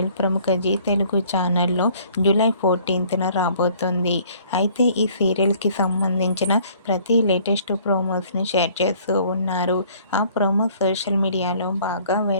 ప్రముఖ G Telugu ఛానల్లో జూలై 14న రాబోతుంది. అయితే ఈ సీరియల్కి సంబంధించిన ప్రతి లేటెస్ట్ ప్రోమోస్ని షేర్ చేస్తూ ఉన్నారు. ఆ ప్రోమోస్ సోషల్ మీడియాలో బాగా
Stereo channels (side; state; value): both; inverted; correlation -0.57